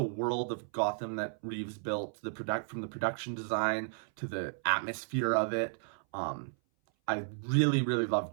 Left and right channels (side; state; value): left; silent; 55 dB below the other